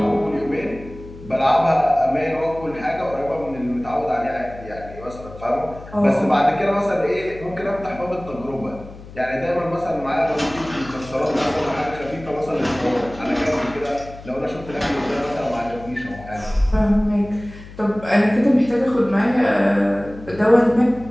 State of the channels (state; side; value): noise; left; hum, 16 dB below the sound